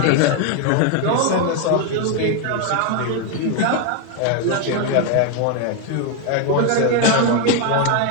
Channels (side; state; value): both; different; correlation 0.01